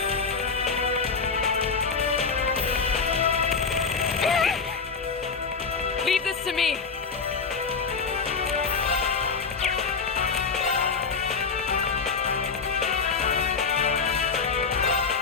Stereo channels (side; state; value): right; quieter; 5.1 dB